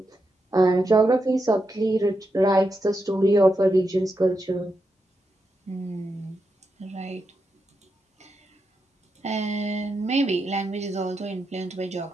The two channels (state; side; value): normal; both; correlation 0.86